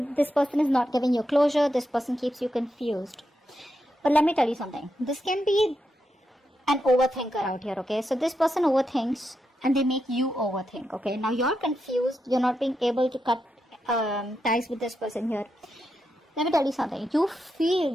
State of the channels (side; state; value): both; normal; correlation 0.85